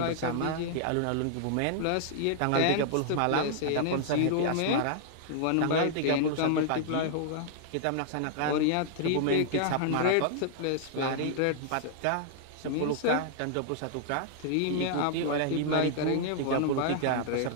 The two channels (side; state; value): both; different; correlation -0.01